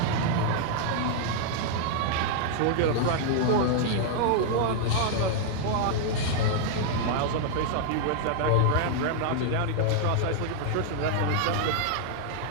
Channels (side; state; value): both; different; correlation -0.01